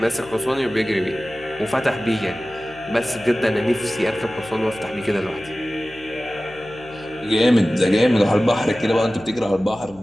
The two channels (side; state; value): left; noise; hum, 23 dB below the sound